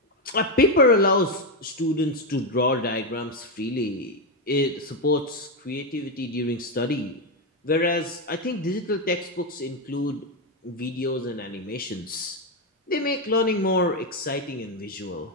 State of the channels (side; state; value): both; normal; correlation 0.07